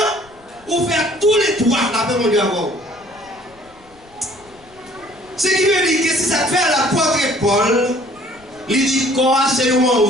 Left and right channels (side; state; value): left; noise; rumble, 28 dB below the sound